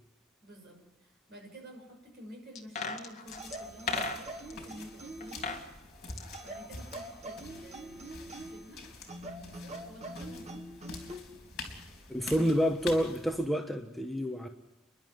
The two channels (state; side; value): normal; both; correlation 0.74